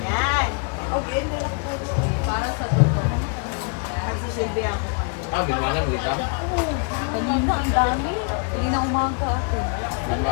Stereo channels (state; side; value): quieter; right; 36.2 dB